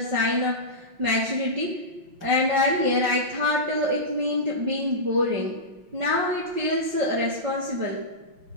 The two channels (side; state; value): left; late; 5.6 ms